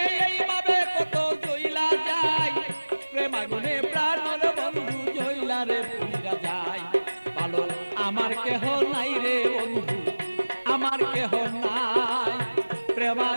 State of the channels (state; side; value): inverted; both; correlation -1.00